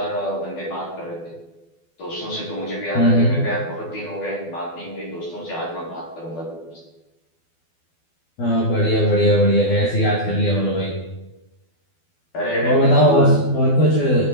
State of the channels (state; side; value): late; right; 12 ms